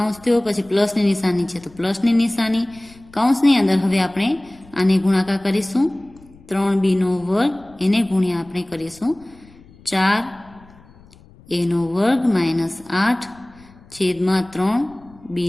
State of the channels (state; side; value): noise; left; rumble, 25 dB below the sound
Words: થયો, પછી પ્લસની નિશાની છે તો પ્લસની નિશાની, કૌંસની અંદર હવે આપણે આને ગુણાકાર કરીશું 3b નો વર્ગ, એને ગુણ્યા આપણે કરીશું 4a નો વર્ગ માઇનસ 8 છેદમાં 3b